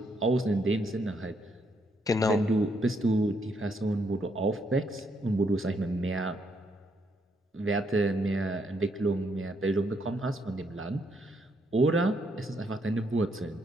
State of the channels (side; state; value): both; normal; correlation 0.75